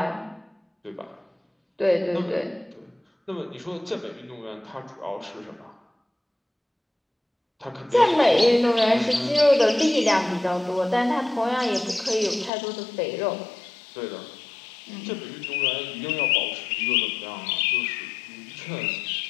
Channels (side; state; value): right; drops out; at 12.5 s